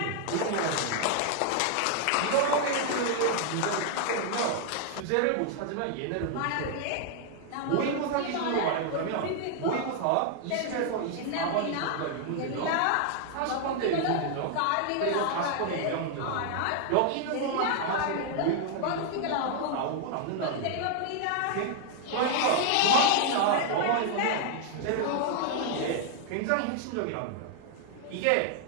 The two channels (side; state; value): both; different; correlation 0.00